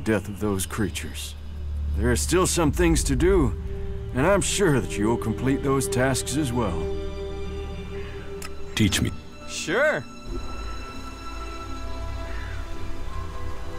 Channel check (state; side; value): identical; both; correlation 1.00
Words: of those creatures. There are still some things to do, and I'm sure that you'll complete those tasks as well. Teach me. Sure.